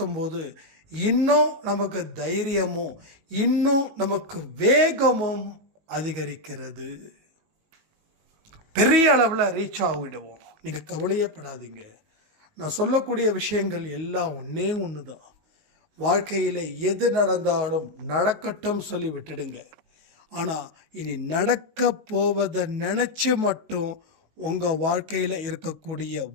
போது இன்னும் நமக்கு தைரியமும் இன்னும் நமக்கு வேகமும் அதிகரிக்கிறது. பெரிய அளவில் ரீச் ஆகிடுவோம். நீங்கள் கவலையே படாதீங்க. நான் சொல்லக்கூடிய விஷயங்கள் எல்லாம் ஒன்று தான். வாழ்க்கையில் எது நடந்தாலும் நடக்கட்டும் சொல்லி விட்டுடுங்க. ஆனால் இனி நடக்க போவதை நினச்சி மட்டும் உங்கள் வாழ்க்கையில் இருக்கக்கூடிய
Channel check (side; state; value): left; late; 19 ms